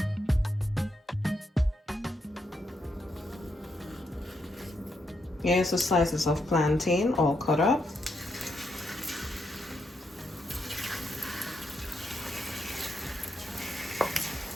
Here's the slices of plantain all cut up.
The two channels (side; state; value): both; normal; correlation 0.81